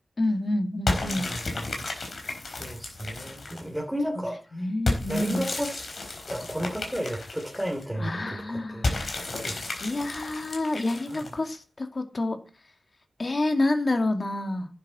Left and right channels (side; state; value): both; normal; correlation 0.96